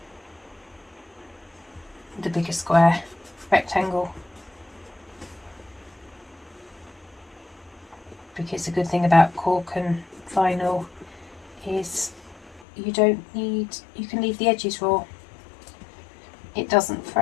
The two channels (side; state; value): right; drops out; at 12.7 s